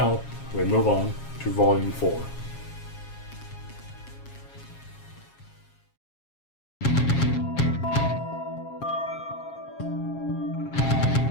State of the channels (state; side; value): late; right; 7.3 ms